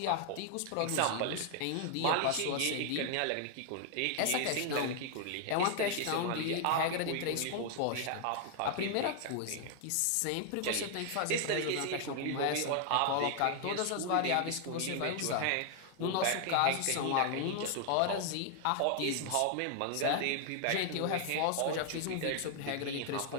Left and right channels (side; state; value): both; different; correlation 0.00